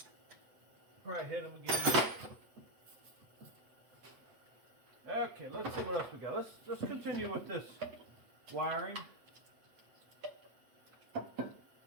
Probably hit them again. Okay, let's see what else we got. Let's continue with this wiring.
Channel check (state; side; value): late; left; 8.3 ms